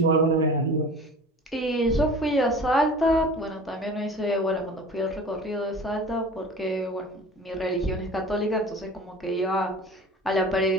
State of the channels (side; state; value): both; normal; correlation 0.40